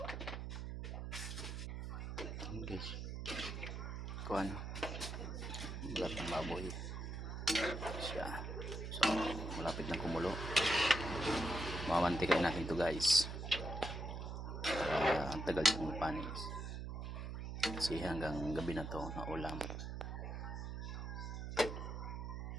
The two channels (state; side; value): noise; right; hum, 5 dB below the sound